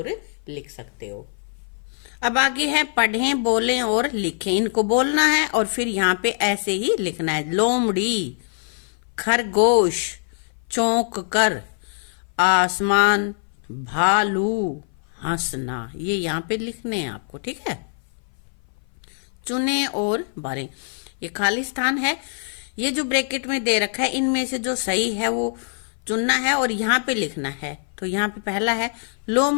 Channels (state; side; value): silent; right; 58 dB below the other